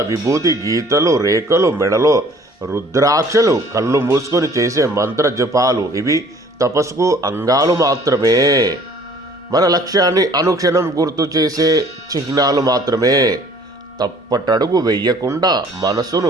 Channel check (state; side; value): normal; both; correlation 0.54